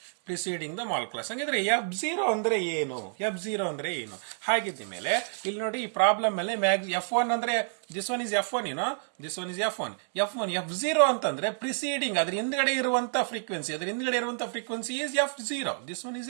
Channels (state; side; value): silent; left; 59 dB below the other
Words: Preceding the mall class. ಹಂಗಿದ್ರೆ F0 ಅಂದ್ರೆ ಏನು? ಹಾಗಿದ್ದ ಮೇಲೆ ಇಲ್ಲಿ ನೋಡಿ, ಈ problem ಮೇಲೆ F1 ಅಂದ್ರೆ this one is F1, this one is F1. F0 ಅಂತಂದ್ರೆ ಪ್ರಿಸೀಡಿಂಗ್, ಅದ್ರ ಹಿಂದ್ಗಡೆ ಇರುವಂತ frequency is F0. This one is